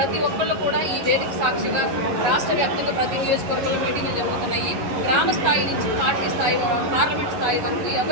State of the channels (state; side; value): late; left; 11 ms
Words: ఒక్కళ్ళు కూడా ఈ వేదిక సాక్షిగా రాష్ట్ర వ్యాప్తంగా ప్రతి నియోజకవర్గంలో మీటింగ్లు జరుగుతున్నాయి. గ్రామ స్థాయి నుంచి పార్టీ స్థాయి పార్లమెంట్ స్థాయి వరకు